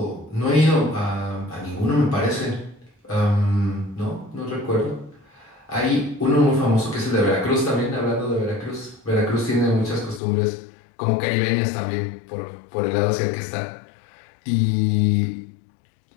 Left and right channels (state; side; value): drops out; right; at 10.2 s